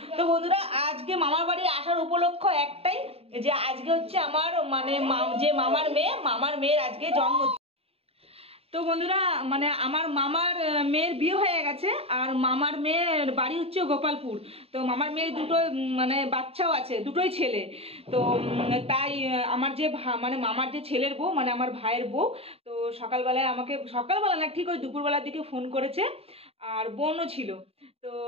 তো বন্ধুরা, আজকে মামার বাড়ি আসার উপলক্ষ একটাই, যে আজকে হচ্ছে আমার যে মামার মেয়ের আজকে জন্মদিন। তো বন্ধুরা, আমার মামার মেয়ের বিয়ে হয়ে গেছে, আর মামার মেয়ের বাড়ি হচ্ছে গোপালপুর। তো মামার মেয়ের দুটো বাচ্চাও আছে, দুটোই ছেলে। তো তাই আমার যে মামার যে ছেলের বউ, আমার ভাইয়ের বউ, তো সকালবেলায় আমাকে, সকালবেলা না ঠিক ওই দুপুরবেলার দিকে ফোন করেছে, আর বোনও ছিল। তো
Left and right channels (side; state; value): left; late; 0.29 ms